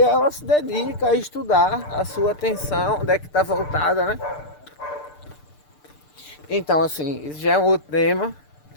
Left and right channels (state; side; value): late; right; 6.7 ms